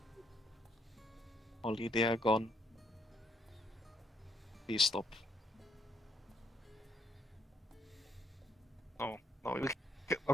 Holly, they are gone. Please stop. No,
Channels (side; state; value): both; normal; correlation 0.71